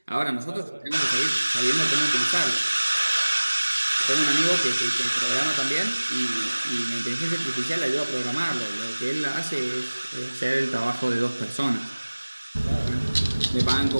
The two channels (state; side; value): inverted; both; correlation -1.00